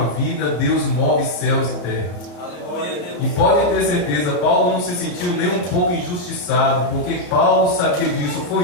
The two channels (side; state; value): right; late; 34 ms